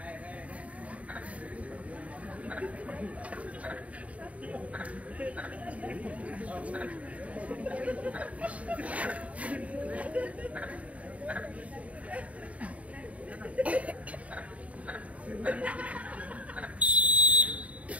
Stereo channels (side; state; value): left; late; 0.067 ms